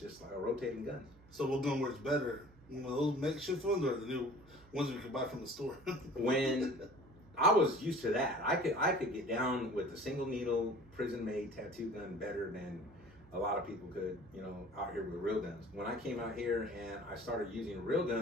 like a rotating gun. So what gun works better? You know, those makeshift ones or the new ones we can buy from the store? When I was used to that, I could get down with a single needle prison made tattoo gun better than a lot of people could, you know, out here with real guns. When I came out here and I started using real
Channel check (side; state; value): right; noise; hum, 24 dB below the sound